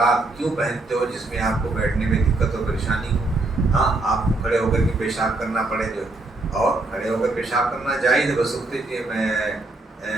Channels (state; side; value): quieter; left; 3.0 dB